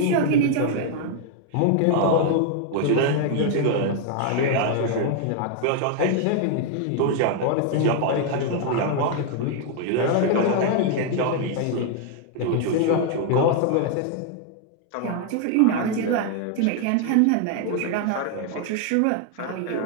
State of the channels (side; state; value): both; different; correlation 0.00